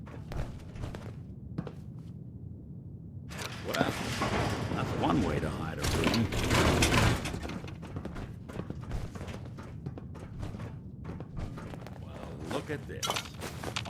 Well, that's one way to hide a room. Well, look at this.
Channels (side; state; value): both; identical; correlation 1.00